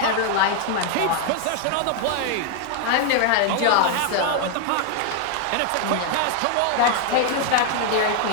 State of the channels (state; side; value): different; both; correlation 0.00